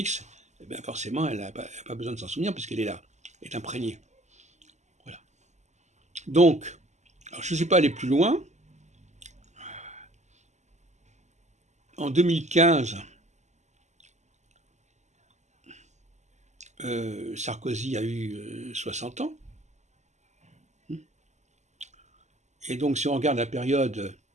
eh bien forcément elle n'a pas besoin de s'en souvenir puisqu'elle est là, elle est imprégnée. Voilà. Donc, alors je ne suis pas allé plus loin. En 2015, Sarkozy a eu 60 ans. Et donc si on regarde la période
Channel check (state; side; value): late; left; 0.33 ms